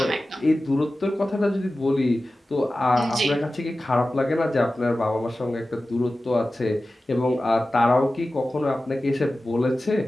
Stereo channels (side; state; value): both; normal; correlation 0.95